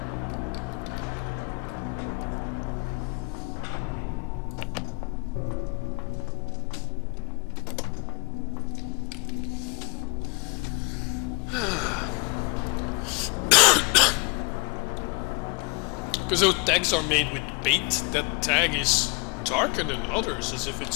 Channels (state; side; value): quieter; right; 31.4 dB